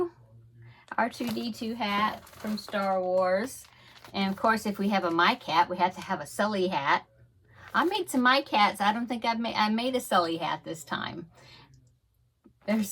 hat from Star Wars. And of course, if we have a My Cat, we have to have a Sully hat. I made some My Cats. I don't think I made a Sully hat this time. They're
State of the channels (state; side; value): identical; both; correlation 1.00